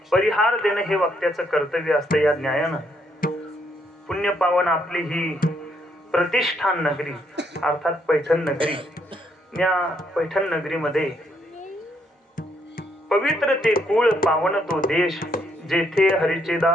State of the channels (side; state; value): both; normal; correlation 0.73